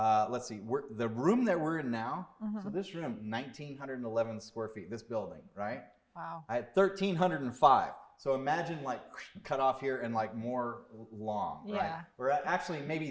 see, the room that we're in now, so this room, 1,911 square feet, this building, right? Wow. I had 1,305. So imagine like cut off here and like more long, right? Yeah. Or actually maybe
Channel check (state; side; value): identical; both; correlation 1.00